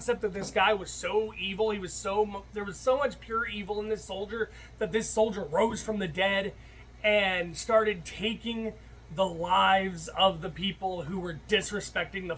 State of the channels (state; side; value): identical; both; correlation 1.00